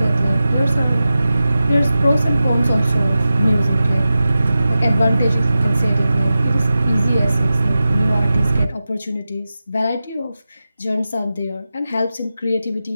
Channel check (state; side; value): inverted; both; correlation -0.93